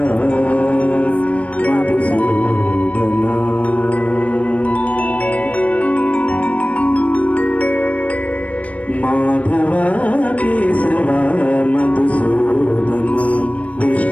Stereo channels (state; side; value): late; right; 0.066 ms